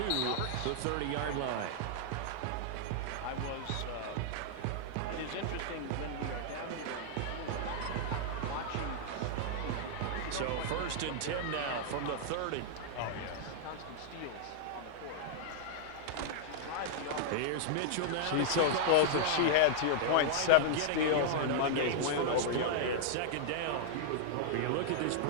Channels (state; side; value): different; both; correlation -0.01